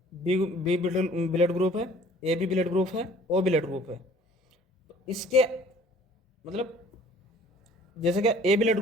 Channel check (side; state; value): both; normal; correlation 0.53